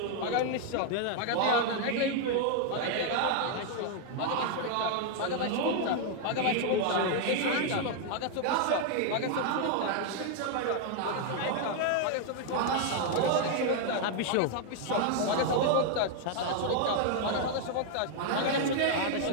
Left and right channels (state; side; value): different; both; correlation 0.00